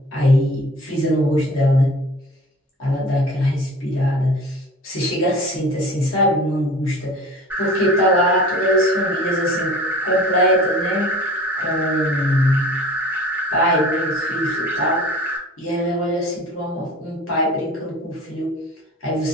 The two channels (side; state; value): both; normal; correlation 0.42